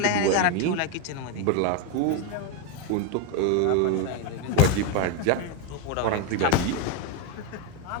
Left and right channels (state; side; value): different; both; correlation 0.02